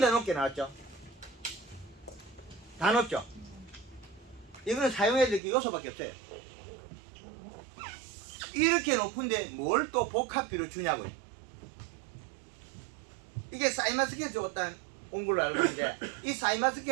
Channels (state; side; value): drops out; left; at 5.4 s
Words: 높게 나왔죠. 다 높죠. 이거는 사용해야 될 게 요소밖에 없어요. 이렇게 높은데 뭘 또 복합비로 주냐고요. 이게 사이마스켓 줬다 온 걸로 알고 있는데 이